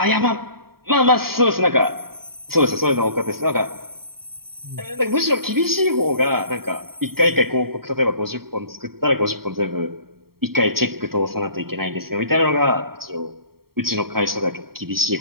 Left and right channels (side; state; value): left; late; 0.94 ms